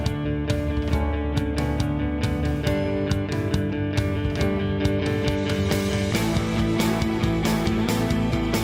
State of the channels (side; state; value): both; identical; correlation 1.00